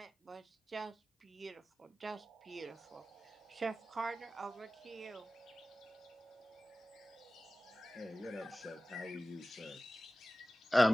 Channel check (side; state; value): both; normal; correlation 0.97